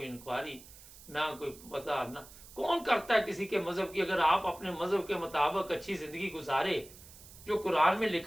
इंक्वायरी, ना कोई पता, ना कौन करता है किसी के मजहब की। अगर आप अपने मजहब के मुताबिक अच्छी जिंदगी गुजारे जो कुरान में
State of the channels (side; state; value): right; noise; hiss, 19 dB below the sound